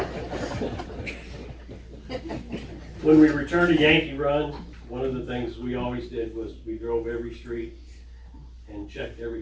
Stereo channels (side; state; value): both; identical; correlation 1.00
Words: When we returned to Yankee Run, one of the things we always did was we drove every street and checked